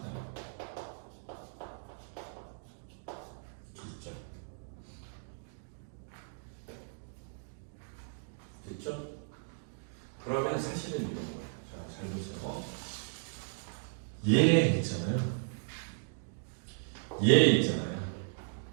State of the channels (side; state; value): left; silent; digital silence